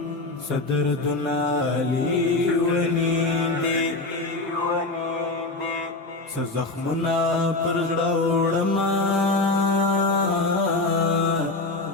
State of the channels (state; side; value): quieter; right; 3.2 dB